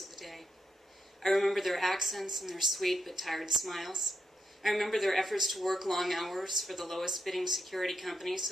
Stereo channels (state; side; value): normal; both; correlation 0.83